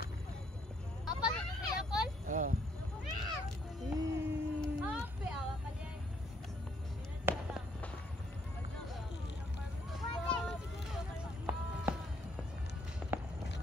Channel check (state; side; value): normal; both; correlation 0.69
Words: Apa ni apple? Ah. Apa awak kalian?